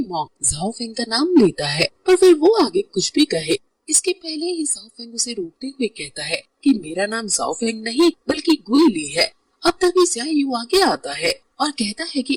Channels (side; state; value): both; identical; correlation 1.00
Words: मॉन्क जाओ फेंग का नाम लेता है, पर फिर वो आगे कुछ भी कहे इसके पहले ही जाओ फेंग उसे रोकते हुए कहता है कि मेरा नाम जाओ फेंग नहीं बल्कि गुई ली है। अब तभी ज़िया यू आगे आता है और कहता है